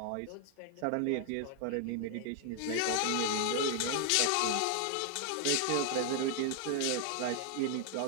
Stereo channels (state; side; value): different; both; correlation 0.00